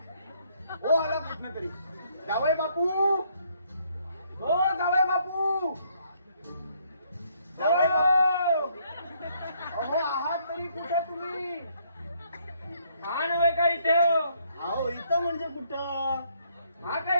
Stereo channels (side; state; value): both; inverted; correlation -0.69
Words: हो आला कुठनं तरी. जावई बापू, हो जावई बापू, जावई बापू.